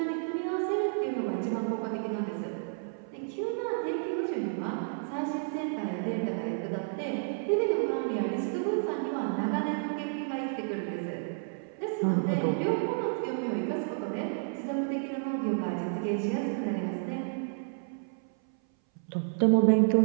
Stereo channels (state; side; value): silent; left; 57 dB below the other